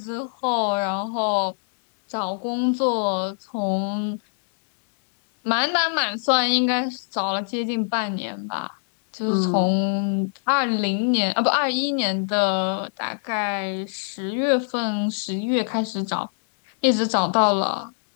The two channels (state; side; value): silent; right; digital silence